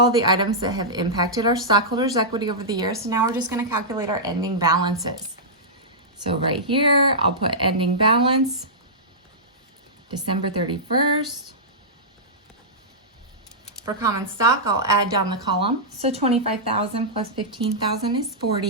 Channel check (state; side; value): normal; both; correlation -0.13